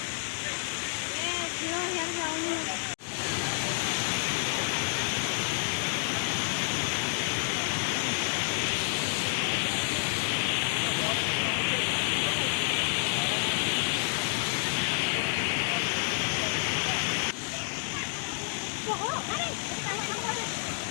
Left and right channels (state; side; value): silent; right; digital silence